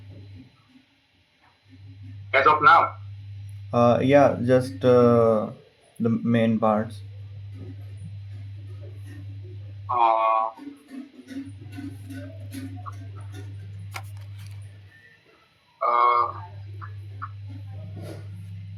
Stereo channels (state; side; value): identical; both; correlation 1.00